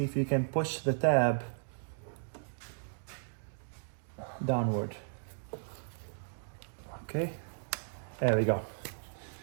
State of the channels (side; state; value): left; silent; digital silence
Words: if you can push the tab downward. Okay, there we go.